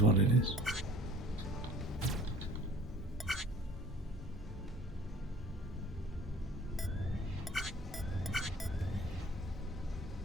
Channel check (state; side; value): normal; both; correlation 0.50